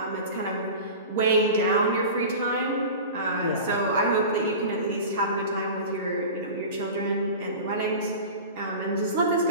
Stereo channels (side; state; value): both; inverted; correlation -0.33